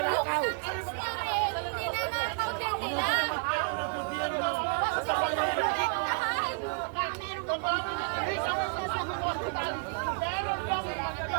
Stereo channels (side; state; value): left; quieter; 36.8 dB